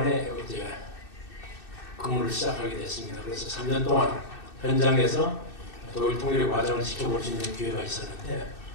이제 근무를 시작하게 됐습니다. 그래서 3년 동안 현장에서 독일 통일의 과정을 지켜볼 수 있는 기회가 있었는데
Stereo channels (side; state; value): right; late; 2.6 ms